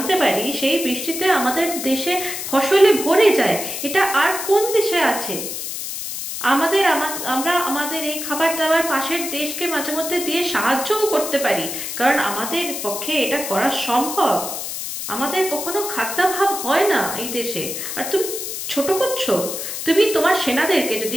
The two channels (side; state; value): left; noise; hiss, 6 dB below the sound